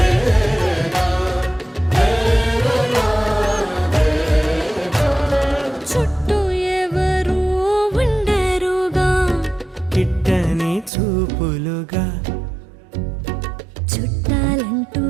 చుట్టూ ఎవరు ఉండరుగా, కిట్టని చూపులుగా, చుట్టాలంటూ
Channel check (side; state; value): left; drops out; at 10.9 s